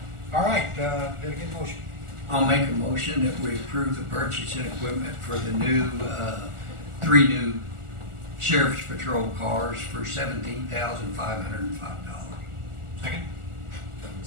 All right, did I get a motion? I'll make a motion that we approve the purchase and equipment for the new, 3 new sheriff's patrol cars for $17,505. Second?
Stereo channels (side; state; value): left; late; 1.4 ms